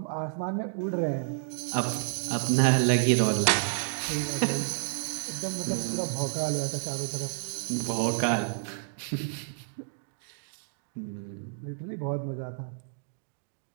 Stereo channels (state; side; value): silent; left; digital silence